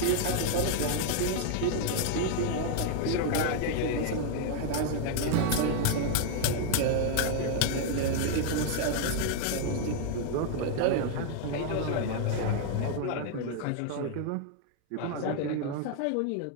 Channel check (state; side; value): different; both; correlation 0.00